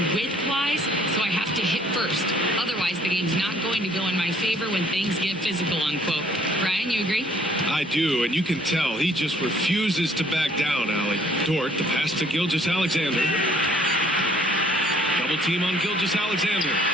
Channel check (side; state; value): both; normal; correlation 0.60